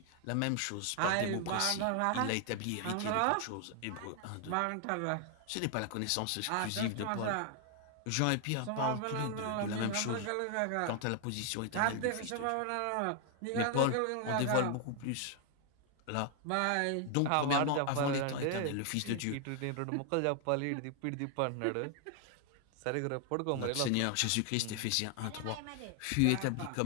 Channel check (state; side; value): different; both; correlation 0.00